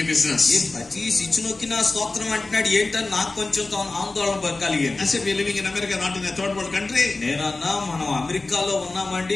business. ఈ ప్రతి స్విచ్ నొక్కినా స్తోత్రం అంటున్నాడు ఏంటని నాకు కొంచెం ఆందోళన కలిగింది. I said we are living in America, not in a third world country. నేనన్నా మనం అమెరికాలో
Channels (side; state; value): right; quieter; 3.4 dB